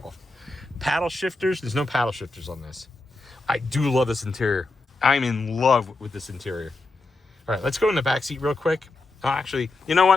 Paddle shifters, there's no paddle shifters on this. I do love this interior. I'm in love with this interior. All right, let's go in the back seat real quick. Actually, you know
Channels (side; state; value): right; quieter; 3.2 dB